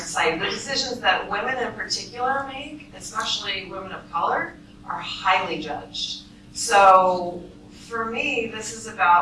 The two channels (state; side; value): identical; both; correlation 1.00